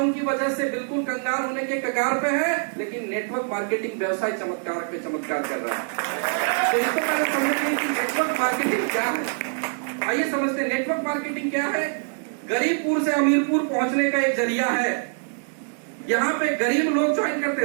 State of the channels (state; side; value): silent; left; 62 dB below the other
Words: की वजह से बिल्कुल कंगाल होने के कगार पे है, लेकिन नेटवर्क मार्केटिंग व्यवसाय चमत्कार पे चमत्कार कर रहा है। तो इसको पहले समझते कि नेटवर्क मार्केटिंग क्या है। आइए समझते हैं नेटवर्क मार्केटिंग क्या है। गरीबपुर से अमीरपुर पहुंचने का एक जरिया है। यहाँ पे गरीब लोग ज्वाइन करते